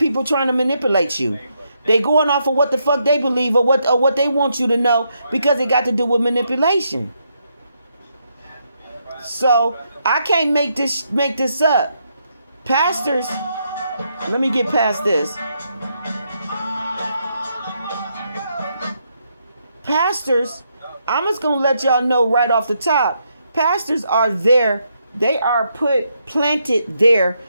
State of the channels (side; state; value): both; inverted; correlation -0.78